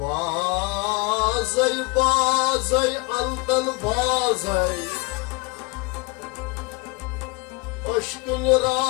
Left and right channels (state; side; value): quieter; right; 27.1 dB